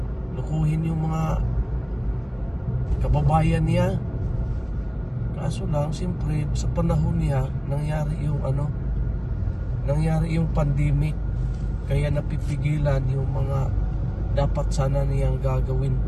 lukuhin yung mga kababayan niya. Kaso lang, siyempre sa panahon niya nangyari yung pandemic, kaya napipigilan yung mga dapat sana niyang gagawin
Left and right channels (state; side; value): identical; both; correlation 1.00